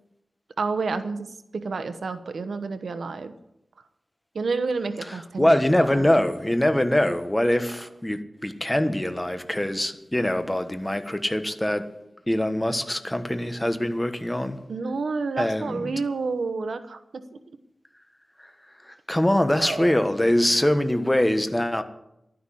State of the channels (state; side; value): normal; both; correlation 0.98